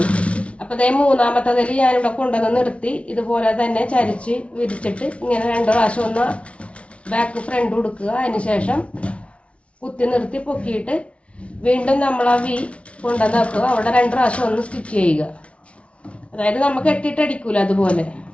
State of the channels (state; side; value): late; right; 0.061 ms